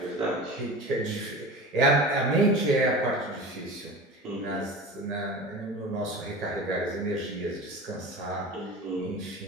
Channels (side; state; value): both; normal; correlation 0.33